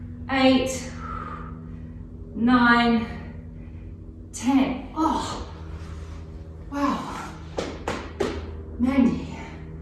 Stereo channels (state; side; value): identical; both; correlation 1.00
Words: 8, 9, 10. Oh, wow. Mandy